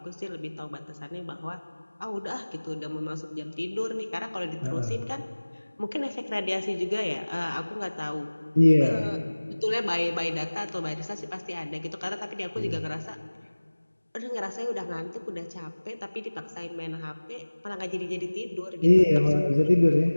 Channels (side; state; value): both; inverted; correlation -1.00